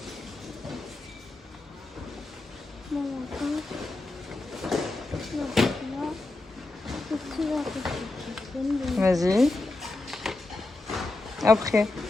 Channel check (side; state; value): right; quieter; 3.0 dB